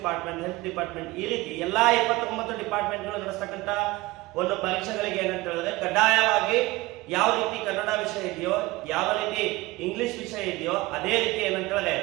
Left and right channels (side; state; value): left; quieter; 20.3 dB